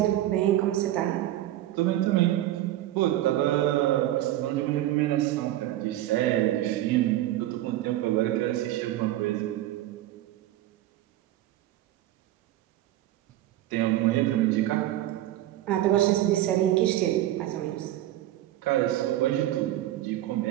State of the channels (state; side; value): quieter; left; 14.1 dB